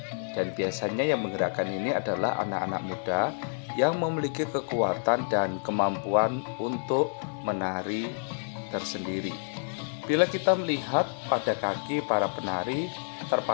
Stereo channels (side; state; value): right; silent; 59 dB below the other